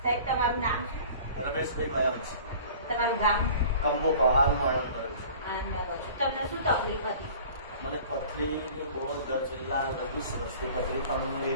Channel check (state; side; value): inverted; both; correlation -0.45